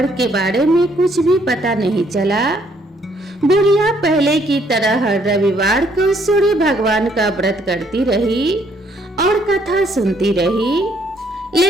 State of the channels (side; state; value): both; normal; correlation 0.67